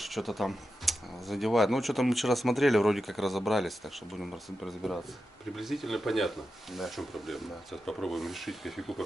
что-то там задевает. Ну, что-то мы вчера смотрели, вроде как разобрались, так что будем разбираться. Приблизительно понятно, Да. в чем проблема. Да. Сейчас попробуем решить, кофейку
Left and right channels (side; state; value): both; normal; correlation 0.90